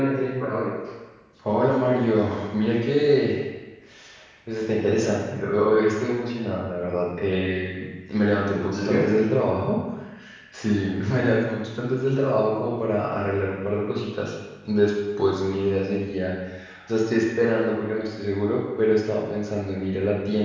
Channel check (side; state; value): both; identical; correlation 1.00